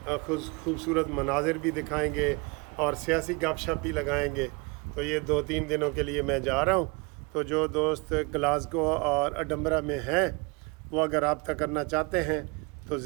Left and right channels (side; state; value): left; quieter; 28.8 dB